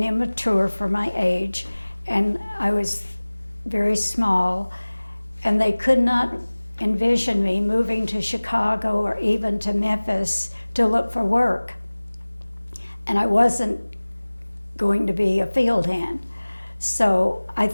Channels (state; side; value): inverted; both; correlation -1.00